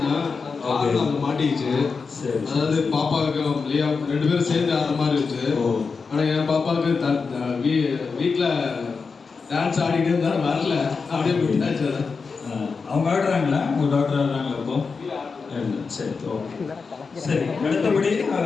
அங்கே மாட்டிக்கிச்சு. அதாவது பாப்பாவுக்கு லியா 2 பேரும் சேர்ந்து ஆடுற மாதிரி இருந்துச்சு. ஆனால் என் பாப்பாவுக்கு வீட்டில் டான்ஸ் ஆடிட்டு இருந்தாலும் வரல, அப்படியே விட்டாச்சு. அவங்க ஆடுறாங்களா? உங்கள் டாக்டர் ஆடுறாங்களா இப்போ? சரி, ஓகே. சரி, அடுத்தபடி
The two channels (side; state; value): right; quieter; 4.9 dB